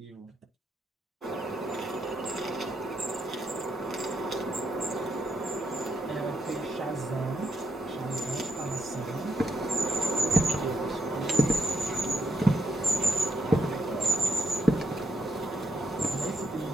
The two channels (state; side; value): normal; both; correlation 0.78